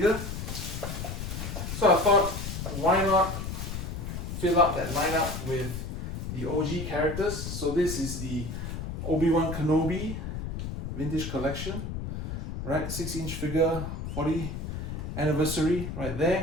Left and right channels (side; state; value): left; noise; rumble, 5 dB below the sound